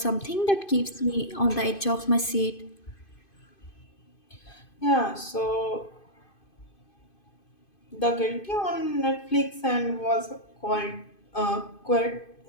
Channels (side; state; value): right; late; 2.5 ms